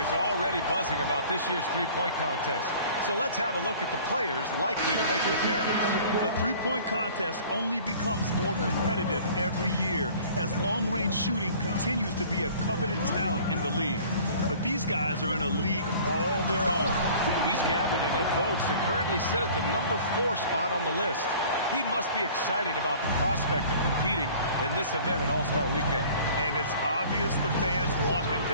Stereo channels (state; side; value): inverted; both; correlation -0.48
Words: already buzzing about this year's three-point contest. So let's have a look at the players likely to make an appearance. The three-point contest only becomes more competitive every year as long-range shooting continues to be a coveted talent in the league. But these guys are in a league all their own. He's gathered enough votes to currently sit at the number 4 spot on the list. He must be excited about the prospect of competing in this event at All-Star Weekend. And it's obvious the fans want him